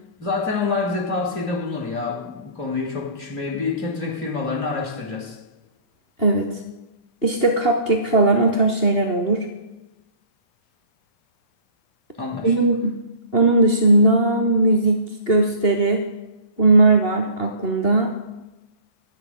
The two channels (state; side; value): late; right; 2.8 ms